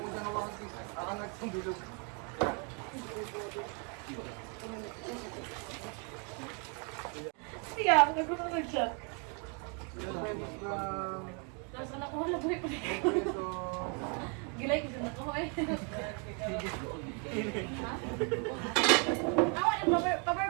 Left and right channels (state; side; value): quieter; left; 36.6 dB